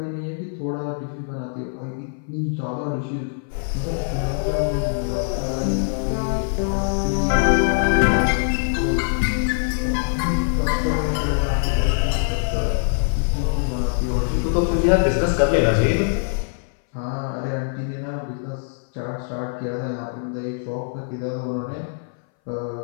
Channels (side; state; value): right; silent; 60 dB below the other